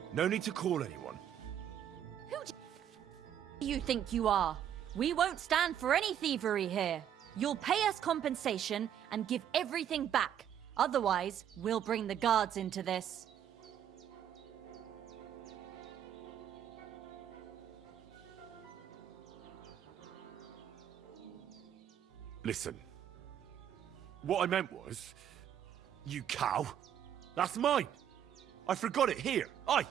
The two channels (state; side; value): quieter; left; 9.8 dB